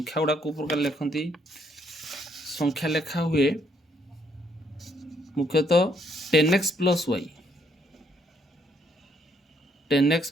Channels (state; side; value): normal; both; correlation 0.71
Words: गुड़ा को प्रकार लिखती संख्या लेखा हुए मुख्यतः 10x plus Y 10x